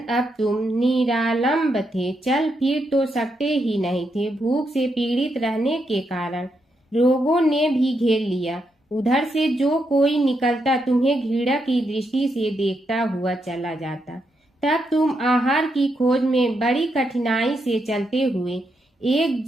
तुम निरालंब थे, चल फिर तो सकते ही नहीं थे। भूख से पीड़ित रहने के कारण रोगों ने भी घेर लिया। उधर से जो कोई निकलता तुम्हें घृणा की दृष्टि से देखता हुआ चला जाता। तब तुम आहार की खोज में बड़ी कठिनाई से चलते हुए एक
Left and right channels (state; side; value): normal; both; correlation 0.81